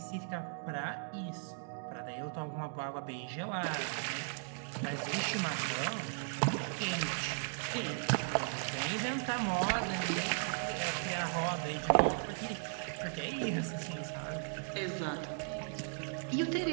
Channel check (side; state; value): left; silent; 53 dB below the other